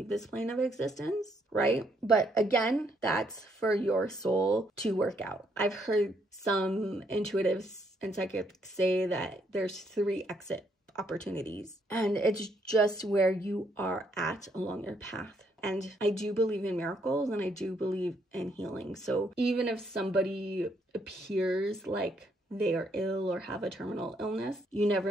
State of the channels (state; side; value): normal; both; correlation 0.72